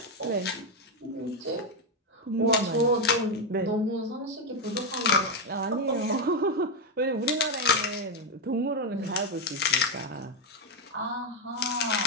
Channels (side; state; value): both; normal; correlation 0.04